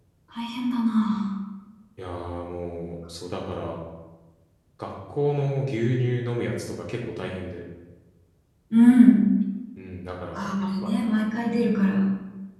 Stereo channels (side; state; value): both; identical; correlation 1.00